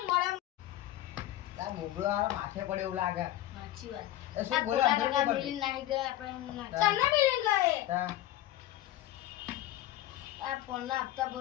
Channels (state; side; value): quieter; right; 14.2 dB